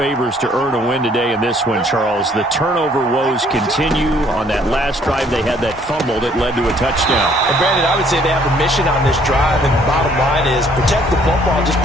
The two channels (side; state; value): both; normal; correlation 0.62